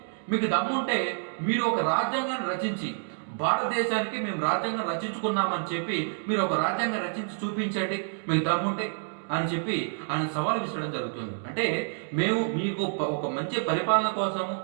దమ్ముంటే మీరు ఒక రాజ్యాంగాన్ని రచించి, భారతదేశానికి మేము రాజ్యాంగం రచించుకున్నామని చెప్పి మీరు ఒక రాజ్యాంగం రచించి చూపించండి, మీకు దమ్ముంటే అని చెప్పి ఆయన సవాల్ విసరడం జరుగుతుంది. అంటే మేము మీకు ఒక మంచి పరిపాలన కోసము,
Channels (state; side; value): silent; left; digital silence